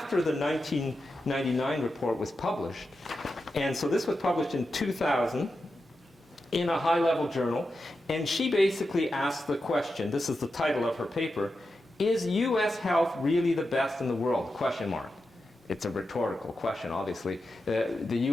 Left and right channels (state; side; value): normal; both; correlation 0.89